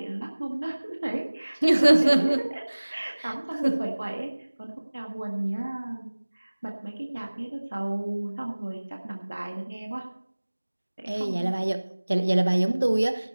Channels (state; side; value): inverted; both; correlation -1.00